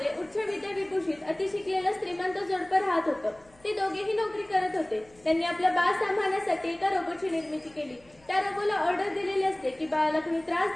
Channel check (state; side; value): noise; left; hum, 29 dB below the sound